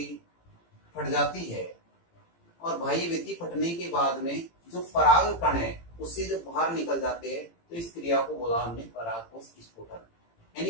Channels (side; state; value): right; late; 18 ms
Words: फट जाती है और बाह्य भित्ति फटने के बाद में जो पराग कण है उससे जब बाहर निकल जाते हैं तो इस क्रिया को बोला हमने पराग कोश स्फुटन।